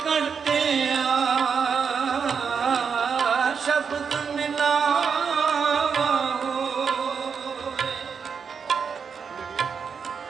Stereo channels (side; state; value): left; quieter; 6.2 dB